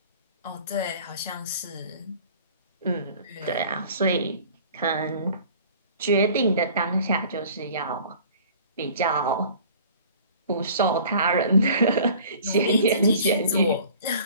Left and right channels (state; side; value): inverted; both; correlation -0.48